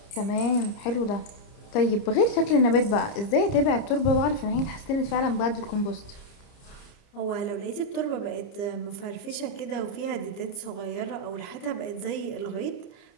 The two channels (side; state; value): right; late; 30 ms